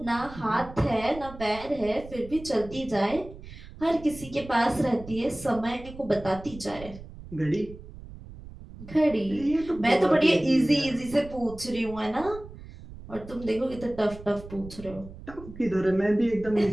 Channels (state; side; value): noise; right; rumble, 16 dB below the sound